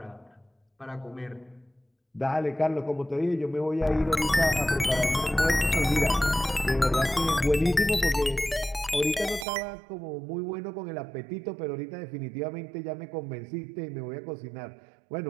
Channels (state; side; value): drops out; left; at 9.5 s